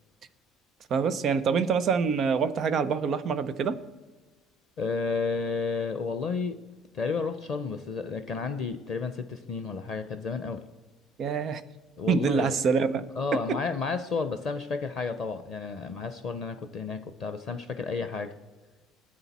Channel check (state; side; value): normal; both; correlation 0.57